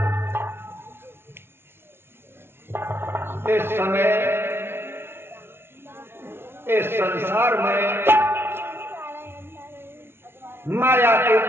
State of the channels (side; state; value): left; late; 0.12 ms